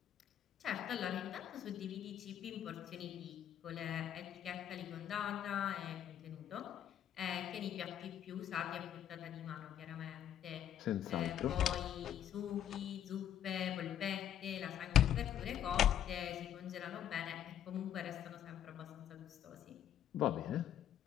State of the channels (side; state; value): right; quieter; 10.3 dB